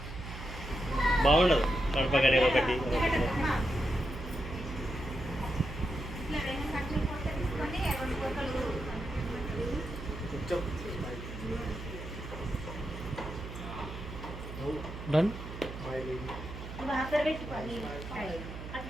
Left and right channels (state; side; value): noise; right; hum, 9 dB below the sound